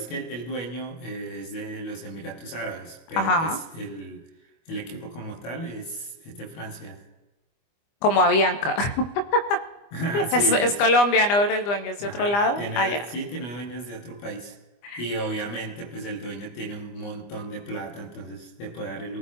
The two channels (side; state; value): right; late; 25 ms